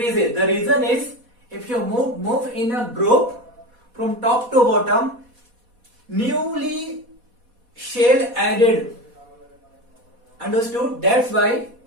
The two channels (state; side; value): late; left; 4.1 ms